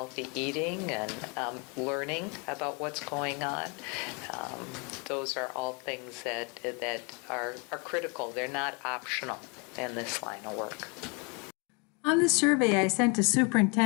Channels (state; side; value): quieter; right; 33.0 dB